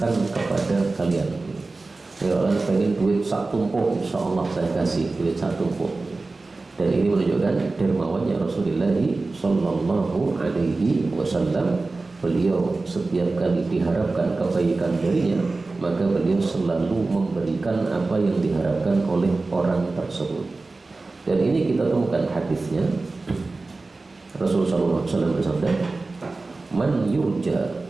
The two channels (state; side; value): quieter; left; 3.5 dB